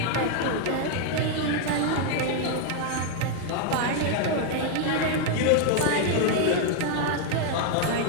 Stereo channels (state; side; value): different; both; correlation 0.00